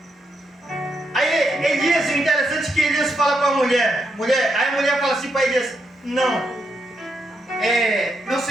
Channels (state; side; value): normal; both; correlation 0.81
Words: Aí Aí Elias, o interessante é que Elias fala para a mulher, aí a mulher fala assim para Elias, não, meu